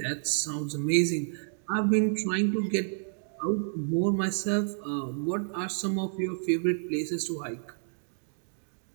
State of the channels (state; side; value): silent; left; digital silence